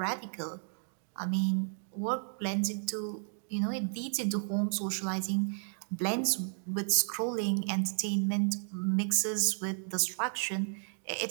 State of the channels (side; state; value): left; silent; 56 dB below the other